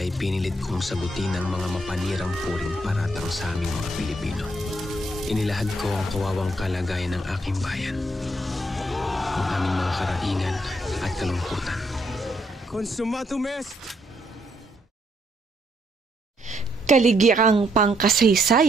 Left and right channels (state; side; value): normal; both; correlation 0.73